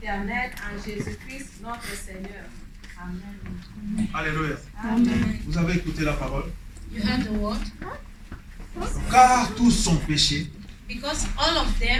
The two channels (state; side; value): identical; both; correlation 1.00